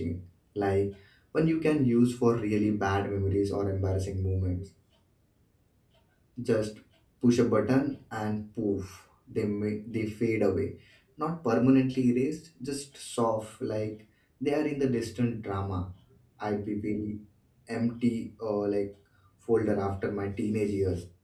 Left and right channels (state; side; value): identical; both; correlation 1.00